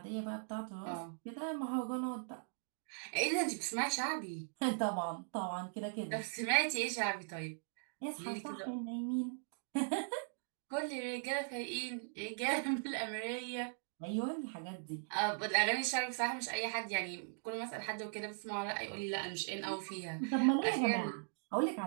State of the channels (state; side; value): silent; left; digital silence